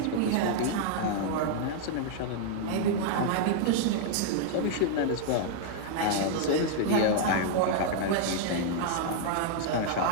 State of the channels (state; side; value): different; both; correlation -0.01